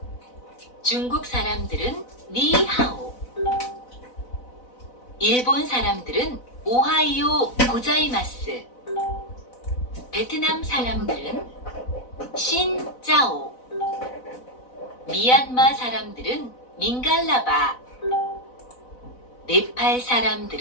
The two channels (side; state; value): right; late; 4.0 ms